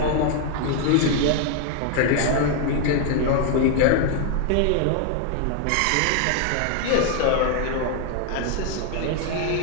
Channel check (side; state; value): both; different; correlation 0.00